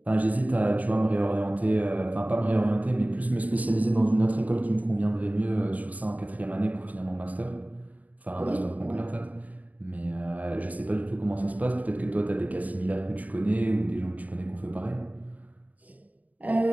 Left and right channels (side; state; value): left; late; 0.074 ms